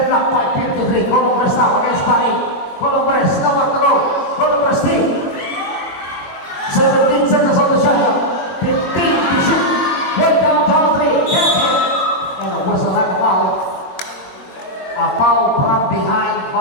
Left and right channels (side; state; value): right; late; 22 ms